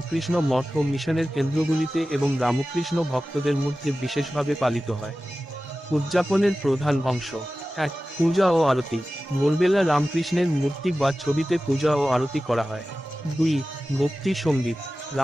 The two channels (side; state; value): both; normal; correlation 0.95